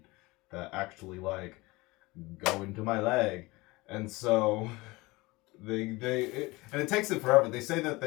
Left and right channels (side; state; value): right; quieter; 22.4 dB